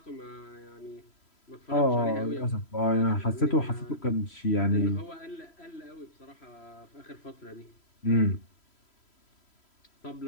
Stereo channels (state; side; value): late; right; 3.0 ms